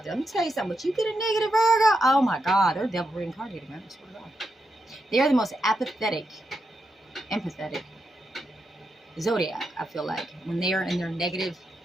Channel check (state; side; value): normal; both; correlation 0.85